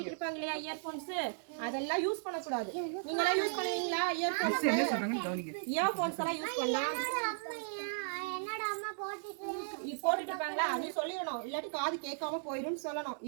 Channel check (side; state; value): left; silent; digital silence